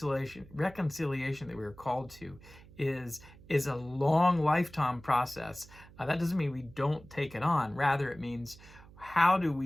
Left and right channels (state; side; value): noise; right; hum, 21 dB below the sound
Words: that we were called to is a long lifetime process. That doesn't mean we don't take it on. Rather, it means, how do